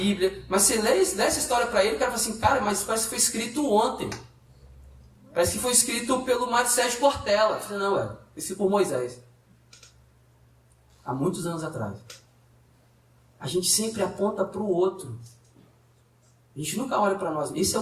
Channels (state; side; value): identical; both; correlation 1.00